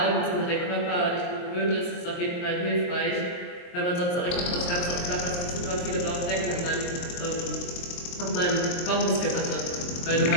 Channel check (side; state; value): right; late; 23 ms